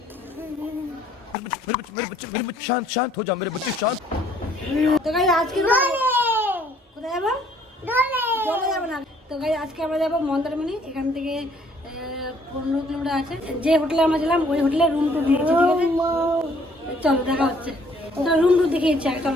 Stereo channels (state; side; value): normal; both; correlation 0.62